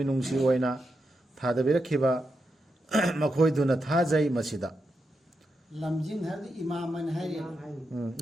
ओइना थादबिरखिबा मखोइदुना थाजै मसीदा लमजिंग हर इमाम मन है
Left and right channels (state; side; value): normal; both; correlation 0.86